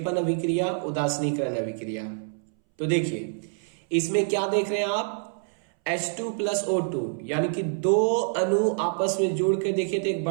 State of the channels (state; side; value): silent; left; 61 dB below the other